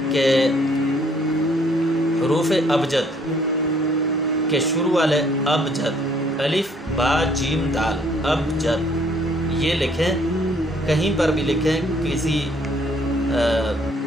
کہ حروف ابجد کے شروع والے ابجد، الف با جیم دال، ابجد یہ لکھیں، کہیں پر بھی لکھیں، کسی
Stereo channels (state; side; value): normal; both; correlation 0.63